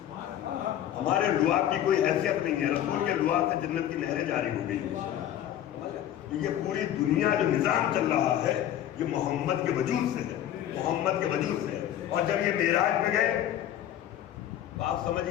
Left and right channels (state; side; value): quieter; right; 11.4 dB